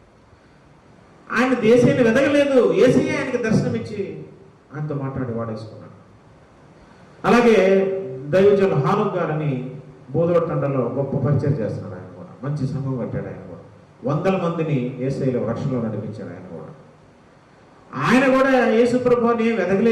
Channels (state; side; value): identical; both; correlation 1.00